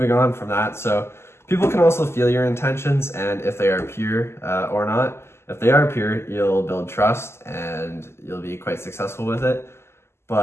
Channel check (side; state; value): right; late; 0.12 ms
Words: on from that, so people can also feel your intentions and if they are pure or not. If they are pure, you'll build trust and you'll be quite successful with it.